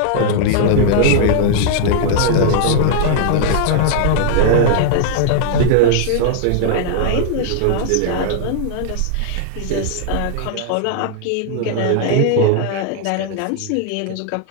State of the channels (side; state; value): both; different; correlation -0.01